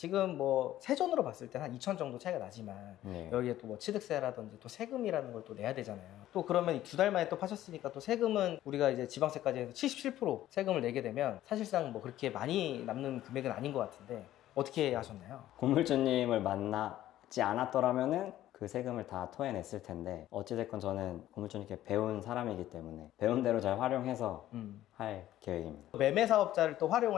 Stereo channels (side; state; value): right; quieter; 13.6 dB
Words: 뭐 세전으로 봤을 때 한 2천 정도 차이가 나지만 여기에 또 뭐 취득세라든지 또 세금이라는 걸 또 내야 되잖아요. 또 그러면 2달 만에 또 파셨으니까 또 세금은 우리가 이제 지방세까지 해서 77% 세금을 내게 되면 사실상 뭐 그렇게 많이 남는 금액은 아닌 것 같은데 어떻게 하셨나요? 고물주님을 만나지 않았더라면은 그 세금을 다 토해냈을 텐데 어찌됐건 저는 고물주님께 배운 사람이기 때문에 배운 대로 잘 활용해서 할 계획입니다. 매매 사업자를 또